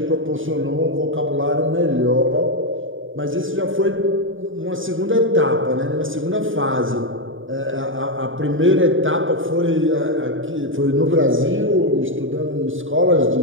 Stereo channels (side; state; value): left; late; 0.57 ms